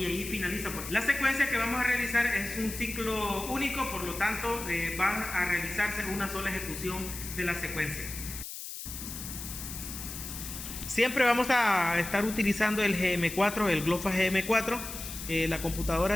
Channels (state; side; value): noise; left; hiss, 9 dB below the sound